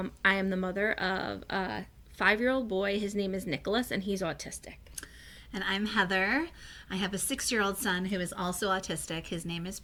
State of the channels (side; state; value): both; identical; correlation 1.00